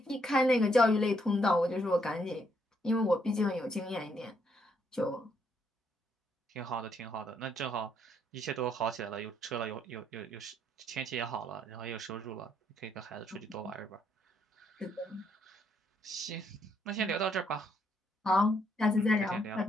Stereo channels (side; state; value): both; normal; correlation 0.73